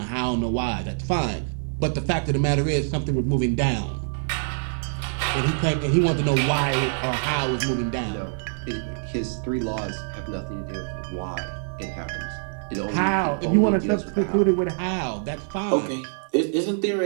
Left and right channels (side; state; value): left; silent; digital silence